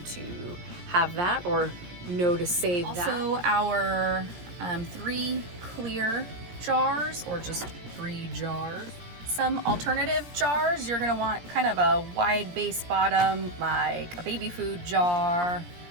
to have that or know to save that. Also our 3 clear jars or just 3 jars. Some alternative jars, you're gonna want kind of a wide base bottom, like a baby food jar,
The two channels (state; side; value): late; left; 17 ms